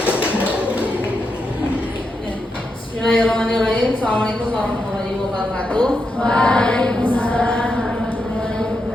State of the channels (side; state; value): both; normal; correlation 0.85